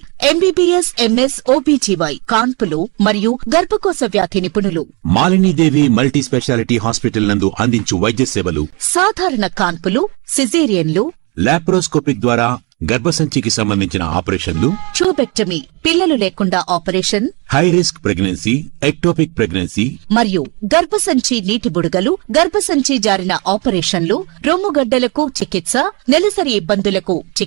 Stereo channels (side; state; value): left; quieter; 30.3 dB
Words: MBBS, MS, OBGY, కాన్పులు మరియు గర్భకోశ వ్యాధి నిపుణులు. మాలినీదేవి మల్టీ స్పెషాలిటీ హాస్పిటల్ నందు అందించు వైద్య సేవలు: సాధారణ కాన్పులు, సిజేరియన్లు, లాప్రోస్కోపిక్ ద్వారా గర్భసంచికి సంబంధించిన ఆపరేషన్లు, ట్యూబెక్టమీ, పిల్లలు లేకుండా operation, high risk pregnancy, ectopic pregnancy మరియు గర్భసంచి నీటి బుడగలు, గర్భసంచి జారిన ఆపరేషన్లు, రొమ్ముగడ్డలకు చికిత్స, నెలసరి ఇబ్బందులకు